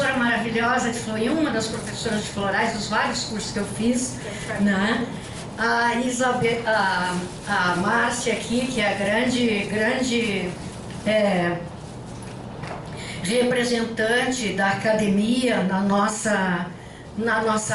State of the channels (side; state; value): both; identical; correlation 1.00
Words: maravilhosa de flor, uma das professoras de florais dos vários cursos que eu fiz, né? A Isabel, a Márcia aqui, que é a grande representante da academia na nossa